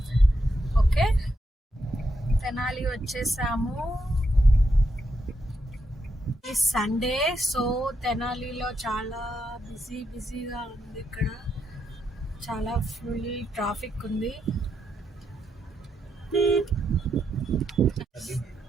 ఓకే, తెనాలి వచ్చేసాము. ఈ సండే, సో తెనాలిలో చాలా బిజీగా ఉంది. ఇక్కడ చాలా ఫుల్ ట్రాఫిక్ ఉంది.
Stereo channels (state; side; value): normal; both; correlation 0.81